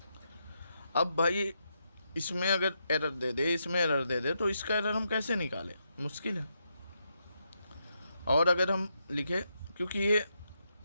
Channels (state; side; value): inverted; both; correlation -0.82